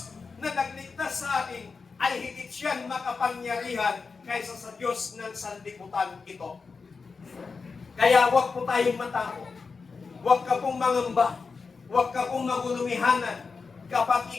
na nagligtas sa atin, ay higit siyang makapangyarihan kaysa sa Diyos ng sanlibutan ito. Kaya huwag po tayong matakot. Huwag ka pong mangamba. Huwag ka pong magulumihanan kapag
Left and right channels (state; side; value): quieter; right; 4.8 dB